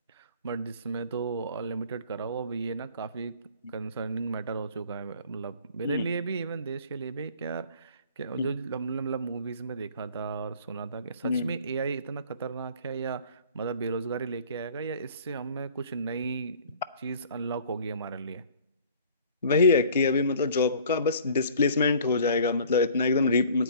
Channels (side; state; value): both; inverted; correlation -0.50